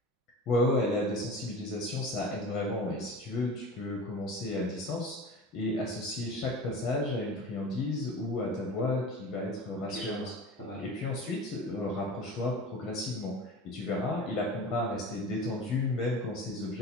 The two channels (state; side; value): normal; both; correlation 0.35